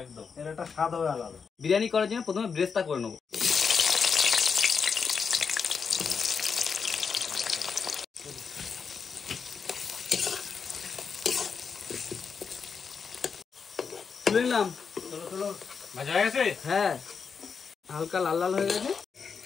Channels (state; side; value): quieter; right; 5.8 dB